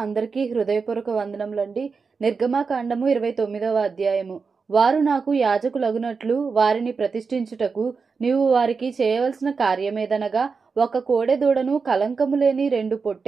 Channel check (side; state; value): left; quieter; 5.0 dB